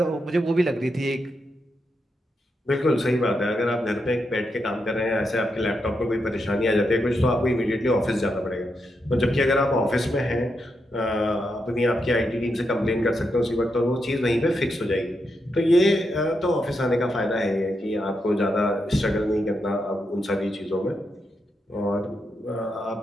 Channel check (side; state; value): both; normal; correlation 0.83